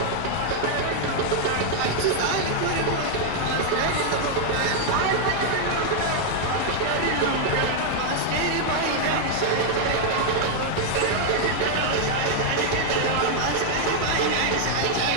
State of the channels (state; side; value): different; both; correlation 0.00